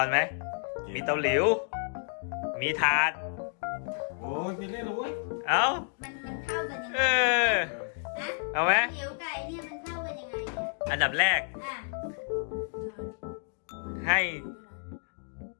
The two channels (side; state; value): right; silent; 56 dB below the other